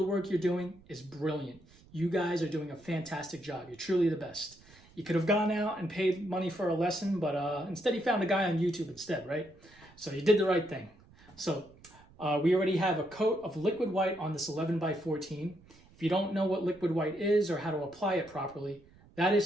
work you're doing is brilliant. You guys are doing a fantastic job. You're truly the best. You could have gone out and paid money for a lesson, but instead you found a guy on YouTube instead, right? So you did the right thing. So we already have a coat of liquid white on this 11 by 14. If you don't know what liquid white is or how to apply it properly, that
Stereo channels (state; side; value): noise; right; rumble, 26 dB below the sound